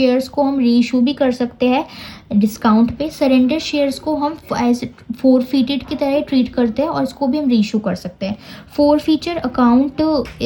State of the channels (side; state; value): both; identical; correlation 1.00